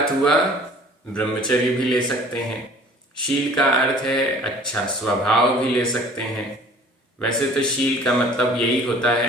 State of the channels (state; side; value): normal; both; correlation 0.49